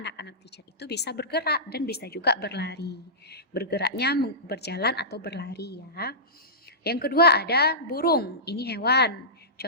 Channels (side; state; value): both; normal; correlation -0.18